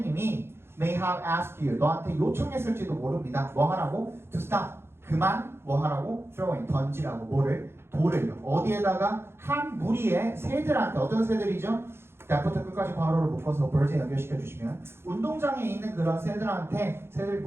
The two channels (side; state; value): left; late; 0.12 ms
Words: may have asked you, 너한테 요청했을지도 모릅니다. 뭐 하라고? To stop, 그만 뭐 하라고? throwing, 던지라고 뭐를? 돌을요. 어디에다가? 한 무리의 새들한테, 어떤 새들이죠? that부터 끝까지 괄호를 묶어서 birds에 연결시켜 주시면 운동장에 있는 그런 새들